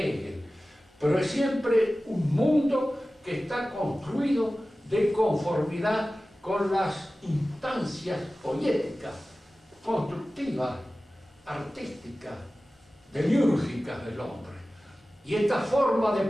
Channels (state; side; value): normal; both; correlation 0.96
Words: Pero es siempre un mundo que está construido de conformidad con las instancias poéticas, constructivas, artísticas, demiúrgicas del hombre. Y esta forma de